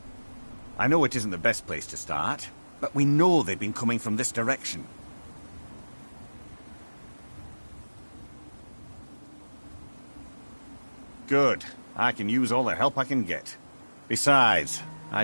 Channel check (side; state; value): both; inverted; correlation -1.00